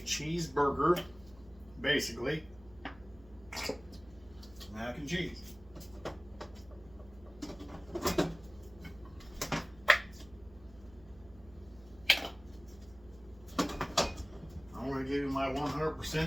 basically. Mac and cheese. I'm going to give you my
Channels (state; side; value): noise; right; hum, 22 dB below the sound